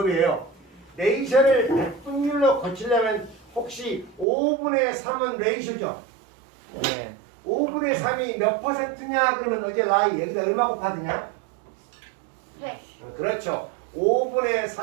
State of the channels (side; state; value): left; drops out; at 4.2 s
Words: 레이셔를 백분율로 고치려면 혹시 5분의 3은 레이셔죠? 네. 5분의 3이 몇 퍼센트냐? 그러면 어제 라이 여기다 얼마 곱하느냐? 100. 그렇죠. 5분의